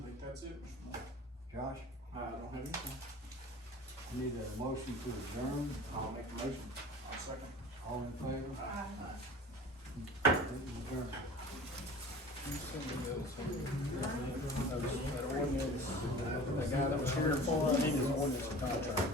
think that's it. John? Josh, I don't have anything. need a motion to adjourn, I'll make a motion. I'll second. all in favor? Aye. Adjourn. That ordinance, that guy that was here before, I need his ordinance and contract.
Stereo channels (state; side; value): normal; both; correlation 0.41